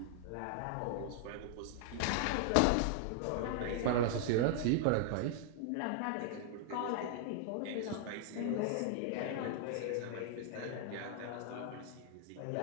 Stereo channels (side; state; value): both; different; correlation 0.00